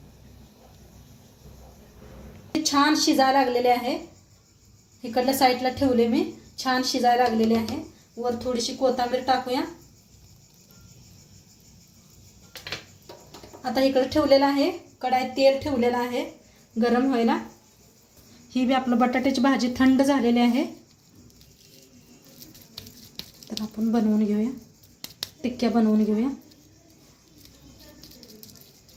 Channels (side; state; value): both; identical; correlation 1.00